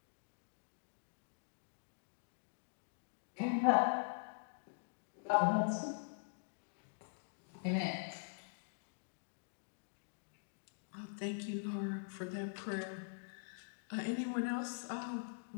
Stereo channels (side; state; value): right; silent; digital silence